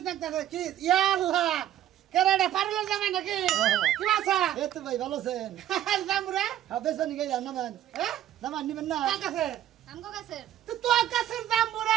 কি ইয়া আল্লাহ কেরাডা পারলো জামাই নাকি কি বাসা এ তো ভাই ভালো আছেন জামুরা হবে সনি গাই নামান নামান নিবেন না কাছে আমগো কাছের তো তোর কাছে জামুরা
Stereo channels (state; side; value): quieter; left; 12.2 dB